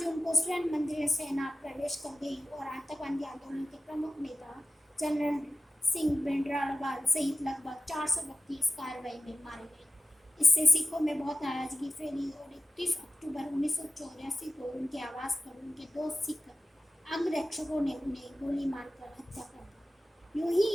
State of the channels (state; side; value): normal; both; correlation 0.94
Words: जून को स्वर्ण मंदिर में सेना प्रवेश कर गई और आतंकवादी आंदोलन के प्रमुख नेता जनरल सिंह भिंडरावाल सहित लगभग 400 व्यक्ति इस कार्रवाई में मारे गए। इससे सिखों में बहुत नाराजगी फैली और 31 अक्टूबर 1984 को उनके आवास पर उनके 2 सिख अंगरक्षकों ने उन्हें गोली मारकर हत्या कर